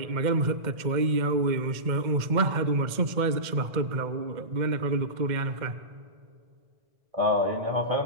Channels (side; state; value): left; late; 2.1 ms